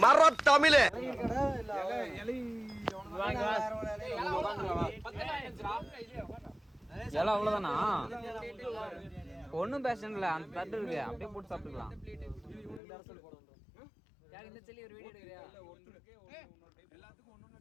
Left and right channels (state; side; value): drops out; right; at 12.8 s